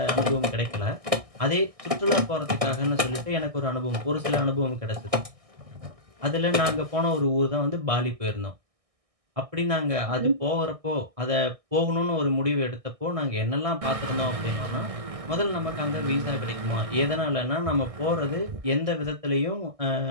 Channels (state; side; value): late; left; 1.6 ms